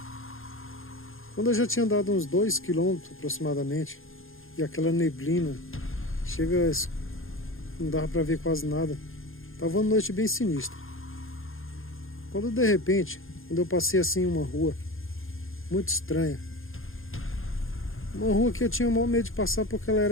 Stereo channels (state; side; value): late; right; 0.60 ms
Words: Quando eu já tinha andado uns 2 quilômetros aproximadamente, e aquela neblina, não dava para ver quase nada, estava uma noite bem sinistra. Quando de repente, quando eu passei assim uma rua, muito estranha, uma rua que eu tinha o maior medo de passar porque ela